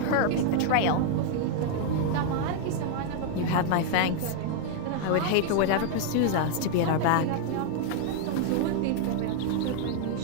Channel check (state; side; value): different; both; correlation 0.00